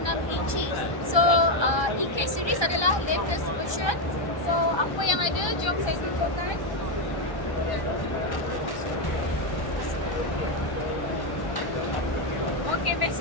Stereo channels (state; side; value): late; right; 1.2 ms